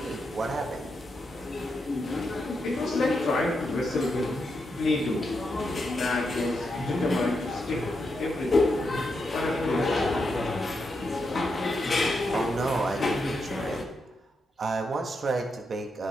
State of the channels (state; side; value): normal; both; correlation 0.84